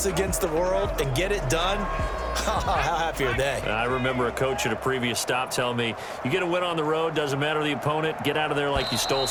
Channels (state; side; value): identical; both; correlation 1.00